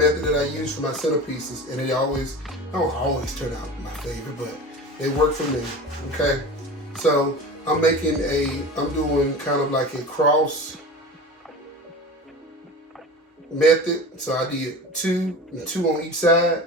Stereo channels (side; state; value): both; normal; correlation 0.33